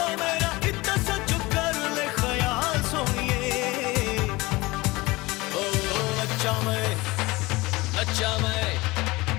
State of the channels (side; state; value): right; quieter; 21.7 dB